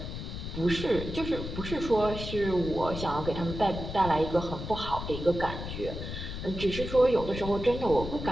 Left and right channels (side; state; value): left; noise; rumble, 7 dB below the sound